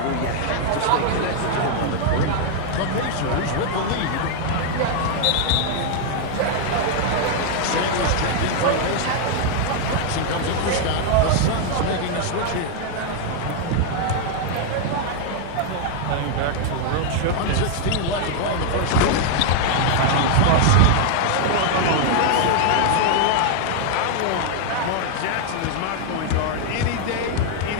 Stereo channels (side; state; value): both; different; correlation 0.00